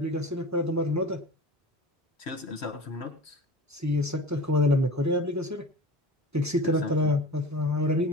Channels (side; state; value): both; normal; correlation 0.35